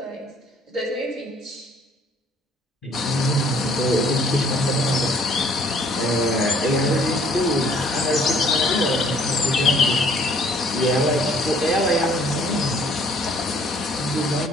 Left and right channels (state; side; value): normal; both; correlation 0.60